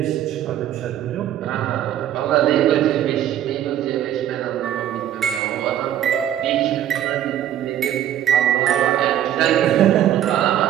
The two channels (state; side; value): quieter; left; 11.3 dB